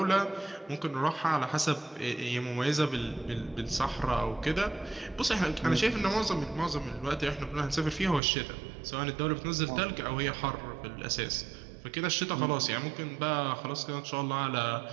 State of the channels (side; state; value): left; drops out; at 8.2 s